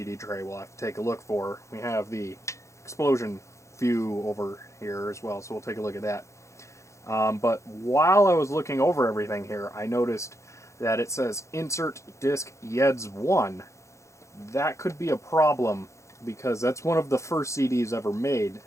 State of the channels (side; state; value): right; late; 0.14 ms